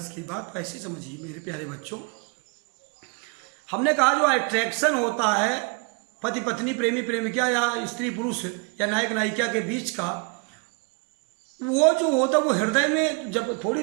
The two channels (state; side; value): quieter; left; 32.9 dB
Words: की बात, तो ऐसे समझिए मेरे प्यारे बच्चों। हमने कहा जो अट्रैक्शन होता है पति पत्नी, प्रेमी प्रेमिका या स्त्री पुरुष या नायक नायिका के बीच का, वो जो होता है वो हृदय में जब थोड़ी